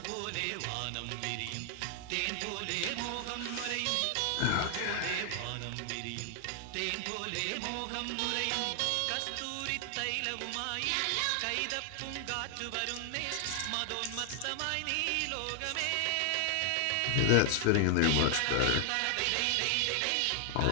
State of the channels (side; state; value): both; different; correlation 0.00